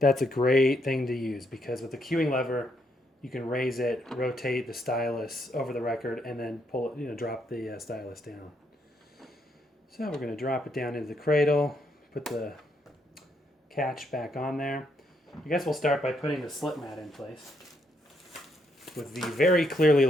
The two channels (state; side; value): normal; both; correlation 0.75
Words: a great thing to use because with the cueing lever, you can raise it, rotate the stylus over the record, and then pull it, drop the stylus down. So we're going to drop it down into the cradle, put the catch back on there. I guess we'll start by putting the slip mat in place with the very clearly